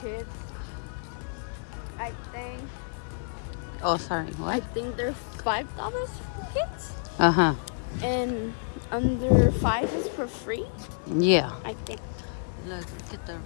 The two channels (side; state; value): right; silent; digital silence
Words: I think. Oh, sorry. What? I think they're $5 for kids, and under 5 is for free. Yeah. I think. Look at the